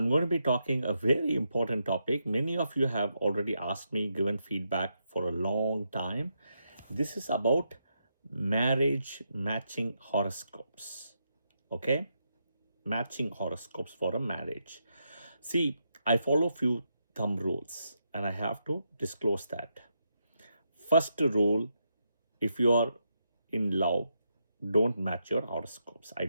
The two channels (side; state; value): both; inverted; correlation -0.82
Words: going to be talking a very important topic. Many of you have already asked me, given feedback for a long time. This is about marriage matching horoscopes. Okay? Matching horoscopes for a marriage. See, I follow few thumb rules and I have to disclose that. First rule, if you are in love, don't match your horoscopes. I